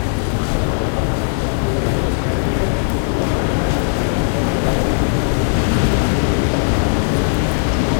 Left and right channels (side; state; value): right; silent; digital silence